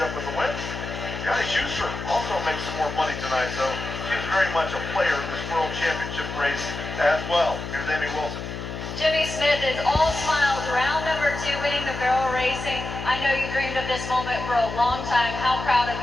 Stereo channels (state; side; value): noise; left; hum, 7 dB below the sound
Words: with the win. Johnny Schuster also makes some more money tonight, so she's very much a player in this World Championship race as well. Here's Amy Wilson. Jimmy Smith is all smiles. Round number 2, winning the barrel racing. I know you dreamed of this moment for a long time. How proud of